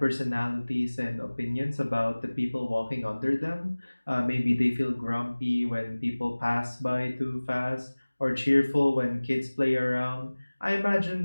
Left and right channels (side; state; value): both; inverted; correlation -1.00